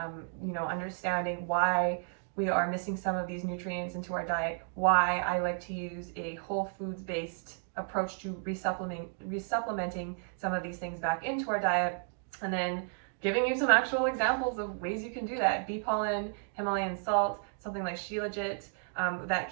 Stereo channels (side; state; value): left; silent; 56 dB below the other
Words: understanding why we are missing some of these nutrients into our diet, why I like to use a whole foods based approach to resupplementing some of these things back into our diet, and then giving you some actual examples of ways you can do that. Bee pollen, Himalayan salt, something like Shilajit, that